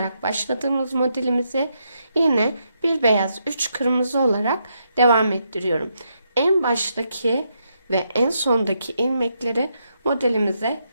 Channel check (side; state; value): both; inverted; correlation -0.79